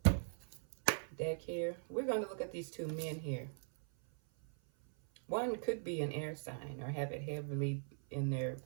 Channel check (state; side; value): silent; left; 51 dB below the other